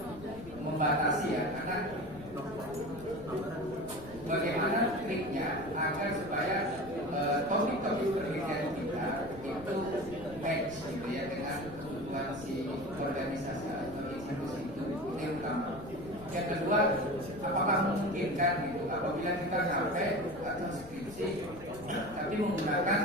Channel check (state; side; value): noise; left; rumble, 16 dB below the sound